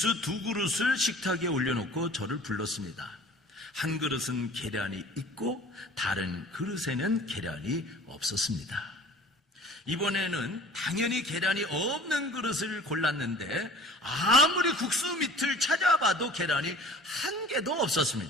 2그릇을 식탁에 올려놓고 저를 불렀습니다. 한 그릇은 계란이 있고 다른 그릇에는 계란이 없었습니다. 이번에는 당연히 계란이 없는 그릇을 골랐는데 아무리 국수 밑을 찾아봐도 계란이 한 개도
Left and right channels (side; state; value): both; normal; correlation 0.46